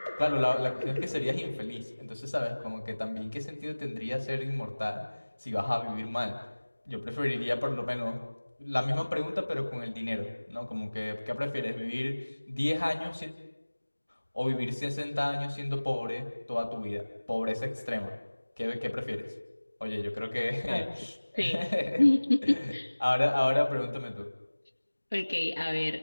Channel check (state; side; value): inverted; both; correlation -1.00